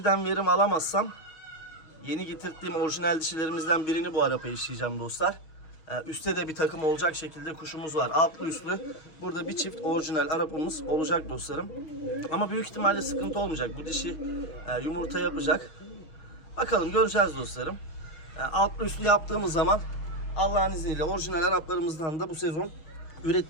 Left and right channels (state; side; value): late; right; 6.3 ms